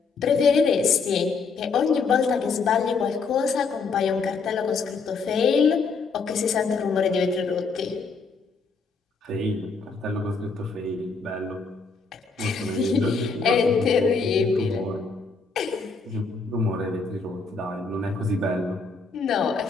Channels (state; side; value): quieter; right; 4.6 dB